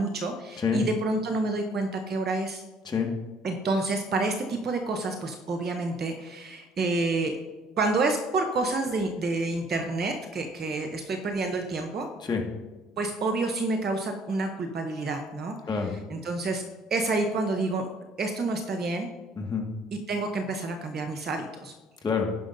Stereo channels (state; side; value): normal; both; correlation 0.60